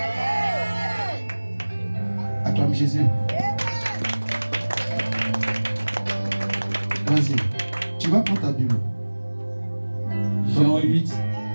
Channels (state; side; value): inverted; both; correlation -1.00